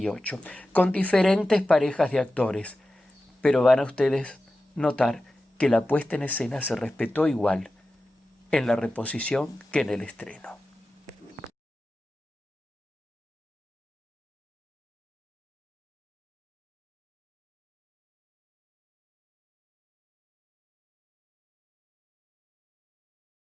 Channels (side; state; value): both; normal; correlation 0.94